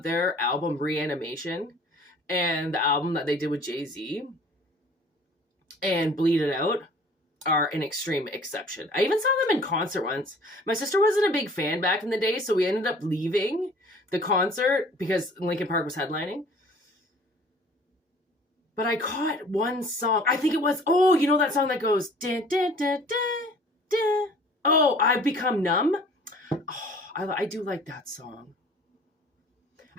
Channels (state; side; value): normal; both; correlation 0.50